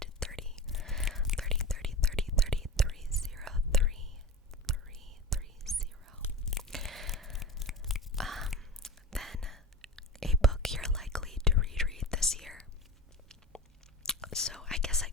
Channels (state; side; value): normal; both; correlation 0.27